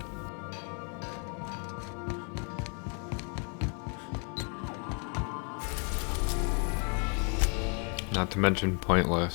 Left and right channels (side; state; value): right; quieter; 38.6 dB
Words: Not to mention